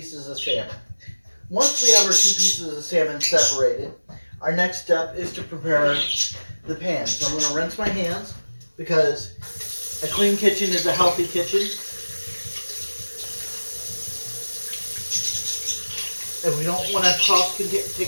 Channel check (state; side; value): inverted; both; correlation -1.00